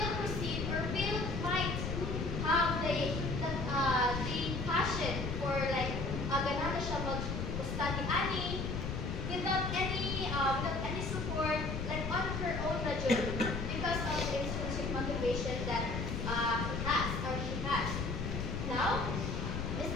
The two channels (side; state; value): left; noise; rumble, 3 dB below the sound